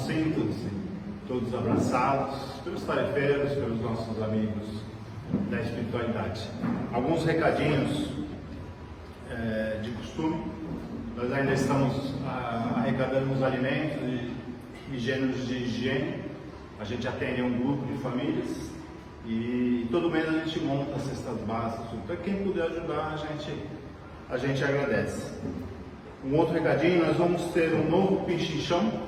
todos abraçados pelos tarefeiros, pelos nossos amigos da espiritualidade. Alguns recadinhos de costume. Nós ainda estamos arrecadando os alimentos e gêneros de higiene. A gente atende um grupo de famílias e todo mês a gente monta as cestas básicas. Então quem puder ajudar, a gente agradece. Um outro recadinho, nós vamos ter um novo Pichinchão,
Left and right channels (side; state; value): both; identical; correlation 1.00